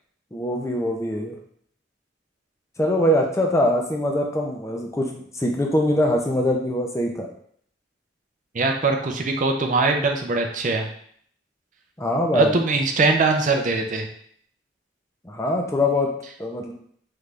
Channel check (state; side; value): normal; both; correlation 0.45